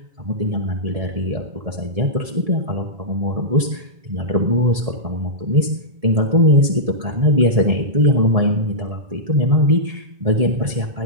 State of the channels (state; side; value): late; left; 1.7 ms